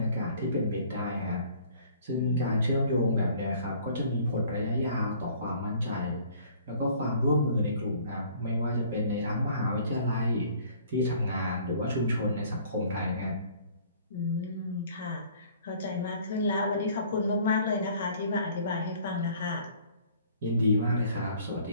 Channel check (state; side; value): inverted; both; correlation -0.55